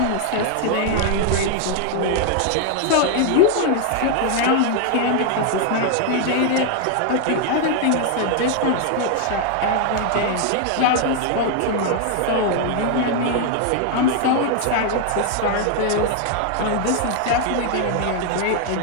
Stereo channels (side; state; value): both; different; correlation 0.00